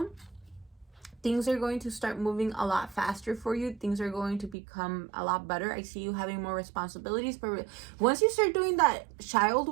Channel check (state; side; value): drops out; left; at 4.5 s